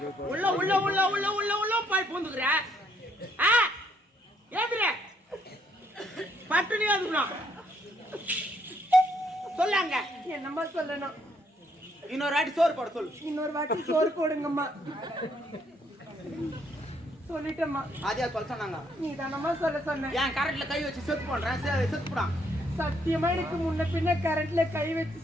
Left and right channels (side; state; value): both; normal; correlation 0.70